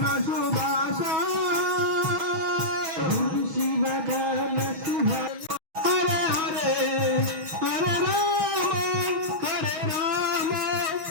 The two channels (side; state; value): left; late; 6.3 ms